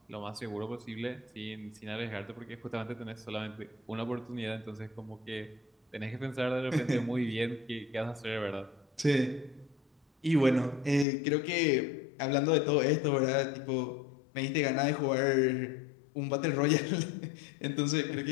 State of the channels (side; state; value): right; drops out; at 11.1 s